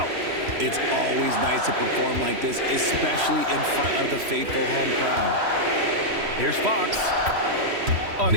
It's always nice to perform like this, especially in front of the faithful home crowd. Here's Fox. An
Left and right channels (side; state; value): left; late; 3.1 ms